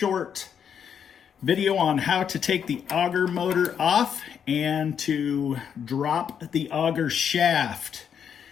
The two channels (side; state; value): right; quieter; 7.9 dB